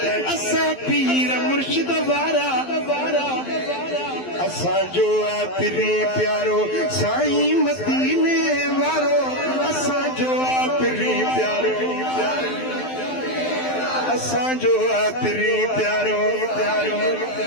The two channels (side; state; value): right; late; 12 ms